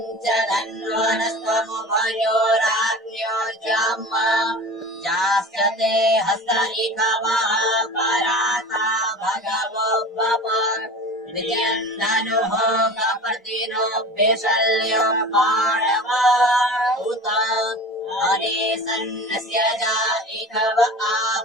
जाश्च ते हस्त इकवः पराता भगवो बप विजयन् धनुः कपर्दिनो विशल्यो बाणवा उत अनेसन्नस्य जा इकव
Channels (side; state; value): both; normal; correlation 0.36